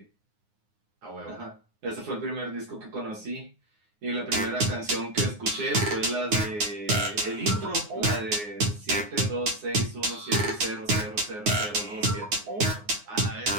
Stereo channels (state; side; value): late; left; 9.6 ms